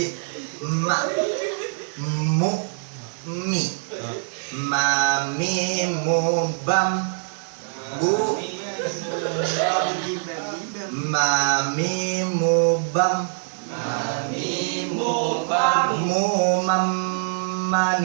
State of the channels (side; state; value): left; silent; digital silence